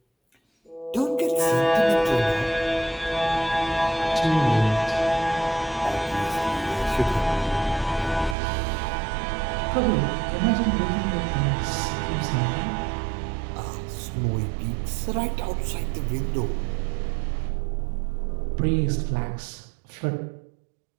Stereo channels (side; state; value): left; drops out; at 8.3 s